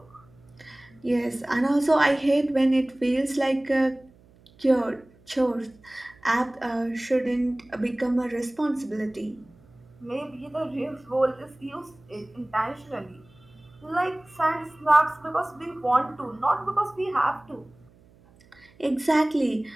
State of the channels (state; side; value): noise; right; hum, 28 dB below the sound